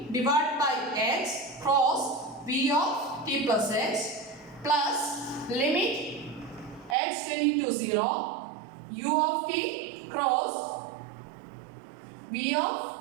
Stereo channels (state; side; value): drops out; left; at 7.0 s